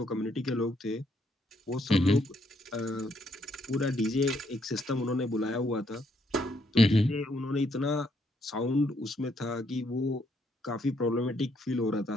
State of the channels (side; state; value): both; normal; correlation 0.73